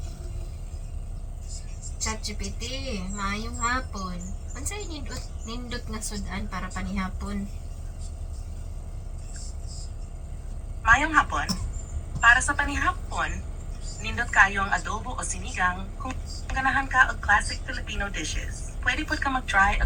ChatGPT, maayong hapon. Unsay nindot nga sudan para panihapon? Mayong hapon. Para sa panihapon, nindot kayo ang adobo o sinigang kung ganahan ka og classic Filipino dishes. Pwede pod ka mag-try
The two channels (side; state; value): both; identical; correlation 1.00